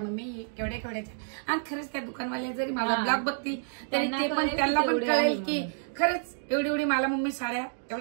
केवढ्या केवढ्याच्या, आणि खरंच त्या दुकानवाल्या जरी माझा ब्लॉग बघतील तरी ते पण त्यांना पण कळेल की खरंच एवढी एवढी मला मम्मी साड्या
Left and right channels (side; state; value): left; silent; digital silence